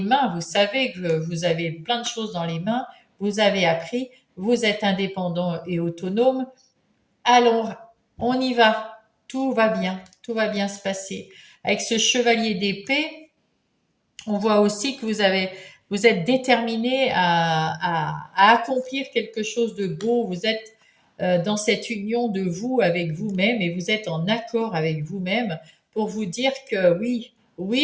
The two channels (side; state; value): both; identical; correlation 1.00